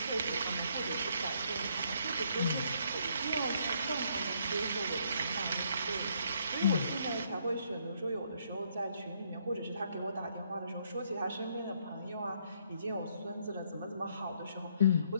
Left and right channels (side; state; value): both; inverted; correlation -0.69